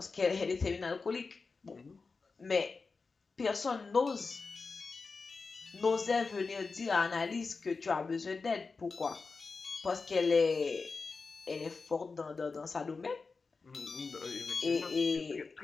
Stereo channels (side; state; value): right; quieter; 4.4 dB